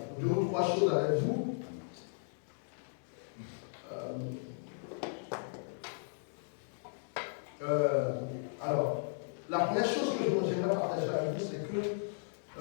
2 ou 3 choses avec vous. Alors, la première chose que j'aimerais partager avec vous, c'est que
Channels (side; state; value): right; silent; digital silence